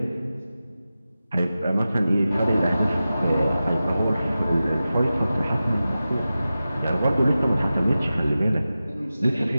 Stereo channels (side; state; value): both; inverted; correlation -0.94